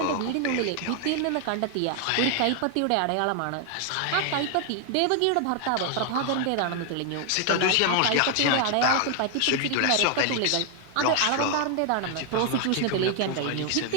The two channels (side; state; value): both; different; correlation 0.00